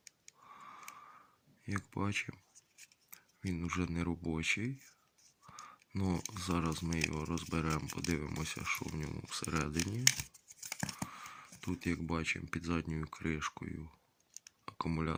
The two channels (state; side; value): identical; both; correlation 1.00